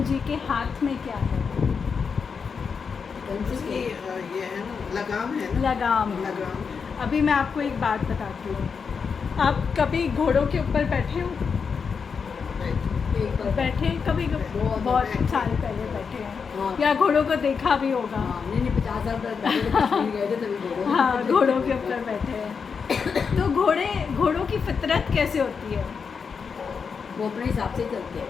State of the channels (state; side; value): quieter; right; 5.8 dB